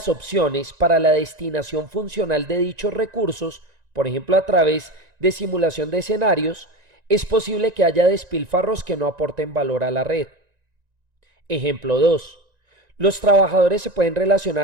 opciones para la destinación funcional de dichos recursos, por ejemplo a través de simulación de escenarios, es posible que haya despilfarros que no aporten valor a la red. Ejemplo 2. Los trabajadores se pueden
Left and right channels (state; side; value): late; left; 1.9 ms